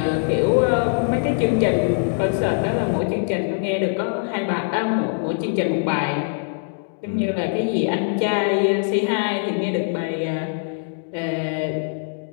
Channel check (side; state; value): right; silent; digital silence